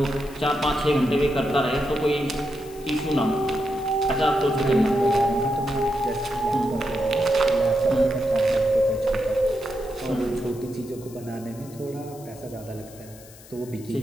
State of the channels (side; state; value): left; noise; hiss, 21 dB below the sound